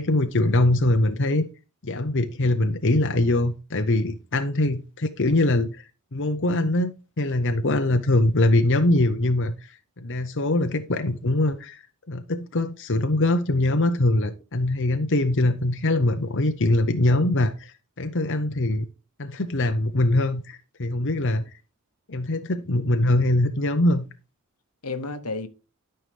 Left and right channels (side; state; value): both; normal; correlation 0.62